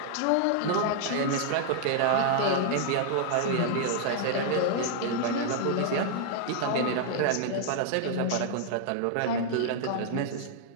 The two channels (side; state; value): both; different; correlation -0.01